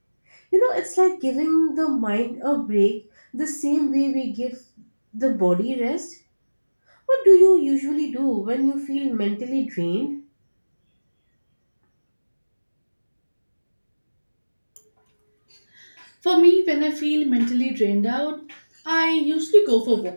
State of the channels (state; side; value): inverted; both; correlation -1.00